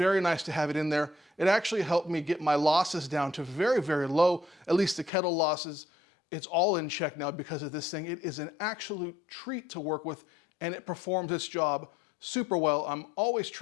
nice to have it in there. It actually helped me get my losses down to very, very low, at least the kettle losses. It's all in check now because of this thing. It is an absolute treat to work with and it performs its job super well. I'm always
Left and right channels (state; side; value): drops out; right; at 5.1 s